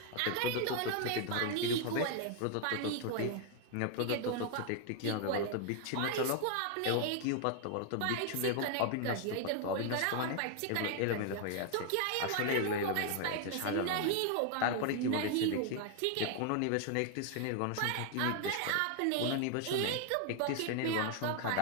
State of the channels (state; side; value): different; both; correlation 0.00